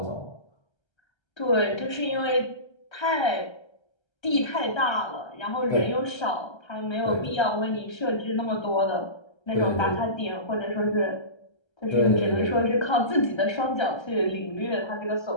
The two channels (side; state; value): right; late; 1.3 ms